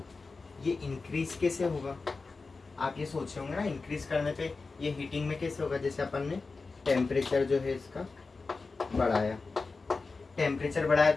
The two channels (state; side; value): quieter; right; 4.1 dB